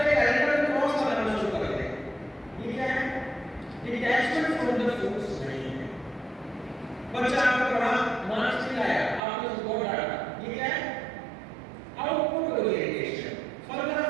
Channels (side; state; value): left; drops out; at 9.2 s